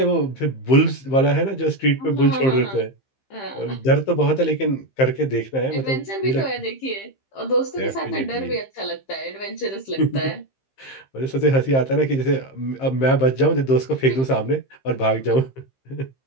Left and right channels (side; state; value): right; late; 15 ms